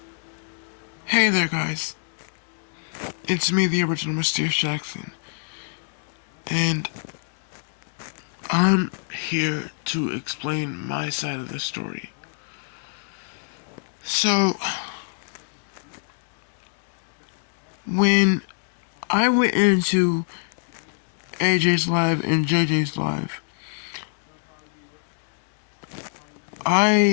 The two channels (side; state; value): right; silent; digital silence